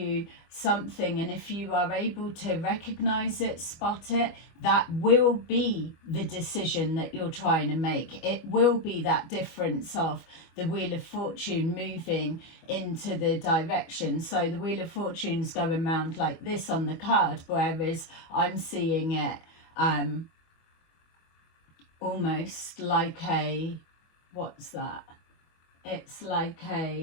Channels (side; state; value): right; late; 25 ms